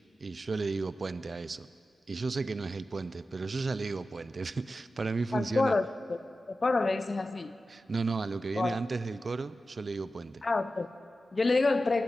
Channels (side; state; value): both; normal; correlation 0.93